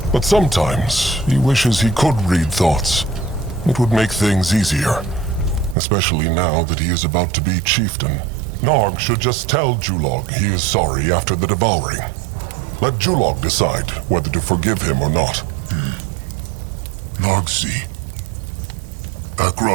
But sometimes he wishes he could read thoughts. It would make things easier, especially now that he is about to be chieftain. Nog should just tell Julog he is sorry after the devouring. Let Julog decide whether to forgive him or not. Nogsi.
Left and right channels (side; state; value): left; drops out; at 5.8 s